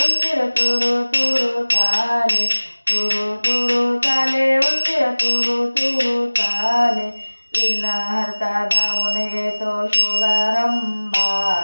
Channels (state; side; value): inverted; both; correlation -1.00